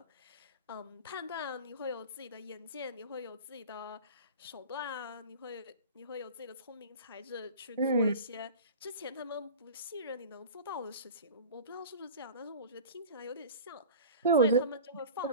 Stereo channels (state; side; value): inverted; both; correlation -0.36